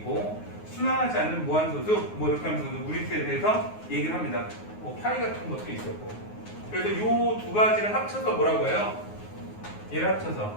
순환하지 않는 무한소수 뭐 이렇게 하면서 무리수에 대해서 얘기를 합니다. 뭐 파이 같은 것도 있었고. 그래서 이 두 가지를 합쳐서 뭐라고 해요? 얘를 합쳐서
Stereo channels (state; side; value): late; right; 9.5 ms